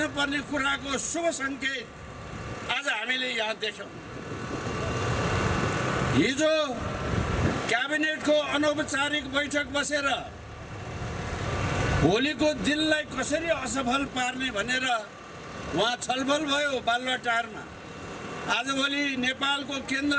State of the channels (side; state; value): both; identical; correlation 1.00